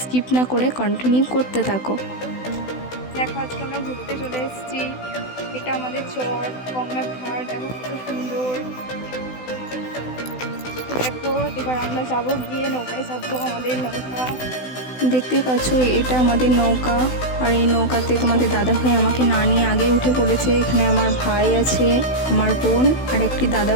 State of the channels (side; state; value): right; late; 16 ms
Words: না করে কন্টিনিউ করতে থাকো। দেখো, আজকে আমরা ঘুরতে চলে এসেছি। এটা আমাদের চর গঙ্গার ধার। দেখো কত সুন্দর। দেখো, এবার আমরা যাবো, গিয়ে নৌকায় চাপবো। আমাদের নৌকা দেখতেই পাচ্ছ, এটা আমাদের নৌকা। আর এই নৌকাতে তোমাদের দাদা ভাই আমাকে না নিয়ে আগে উঠে পড়েছে। এখানে আমার ভাই আছে, আমার বোন আর একটি দাদা